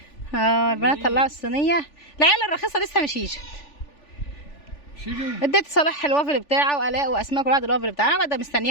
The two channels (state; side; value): late; right; 3.4 ms